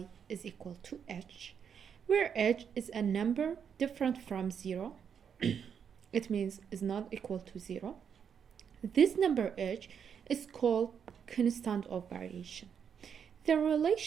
is equal to h, where h is a number different from 0. It means is not equal to 0. This number h is called constant of variation. The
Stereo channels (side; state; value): left; quieter; 7.5 dB